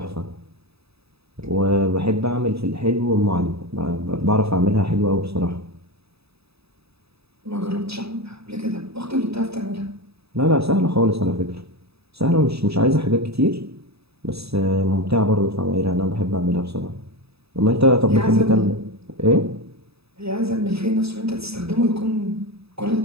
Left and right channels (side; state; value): left; late; 0.78 ms